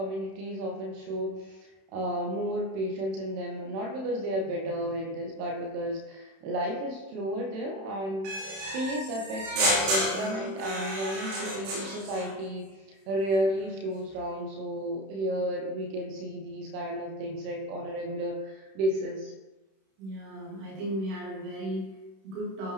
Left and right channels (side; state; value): left; late; 31 ms